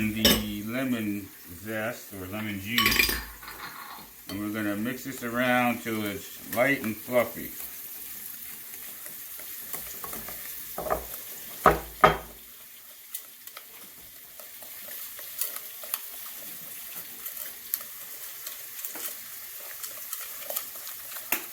the lemon zest or lemon juice, and we're going to mix this around till it's light and fluffy.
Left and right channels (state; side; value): identical; both; correlation 1.00